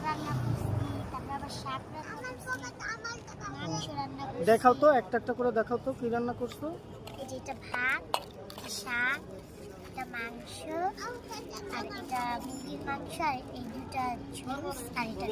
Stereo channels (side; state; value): both; identical; correlation 1.00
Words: রান্না করছি, তারপর আবার শাক রান্না করছি, মাংস রান্না করছি। দেখাও তো, একটা একটা করে দেখাও তো কি রান্না করছো। এই যে এটা ভাত, এটা শাক, এটা মাংস, আর এটা মুরগির মাংস, আর এই দুটা জুস, আর এটা